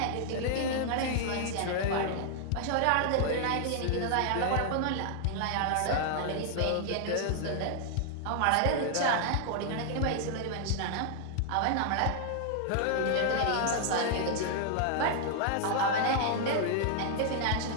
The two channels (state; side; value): different; both; correlation 0.00